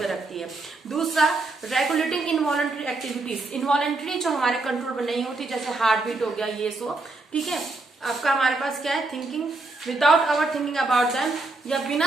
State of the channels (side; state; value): left; quieter; 3.3 dB